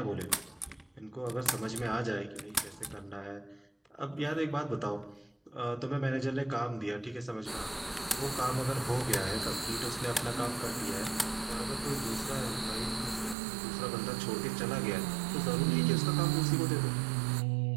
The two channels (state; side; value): drops out; left; at 13.4 s